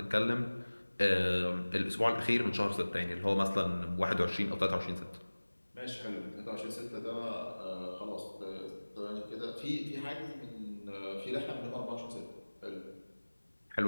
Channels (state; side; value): inverted; both; correlation -1.00